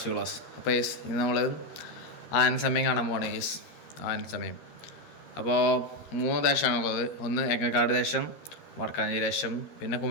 class. അപ്പോൾ ഇന്ന് നമ്മൾ ആന സമയം കാണാൻ പോവാണ്. ആന സമയം അപ്പോൾ 3 ദേശമാണുള്ളത്. ഒന്ന് എങ്ങക്കാട് ദേശം, വടക്കാഞ്ചേരി ദേശം, പിന്നെ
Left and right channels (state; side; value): late; right; 13 ms